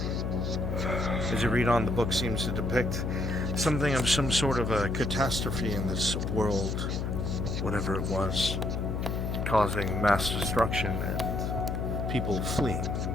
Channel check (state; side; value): noise; left; hum, 1 dB below the sound